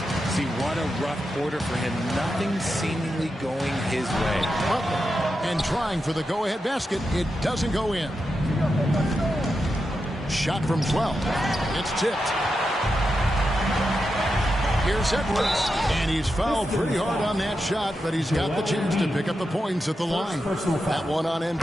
See, what a rough quarter for him. Nothing seemingly going his way. And trying for the go-ahead basket. It doesn't go in. Shot from 12. It's tipped. Here's Edwards, and he's fouled pretty hard on that shot, but he's got the chance to pick up the points at the line. That one on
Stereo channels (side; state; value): both; normal; correlation 0.88